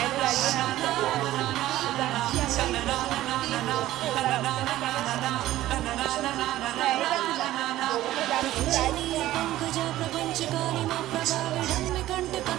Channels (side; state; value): left; quieter; 14.9 dB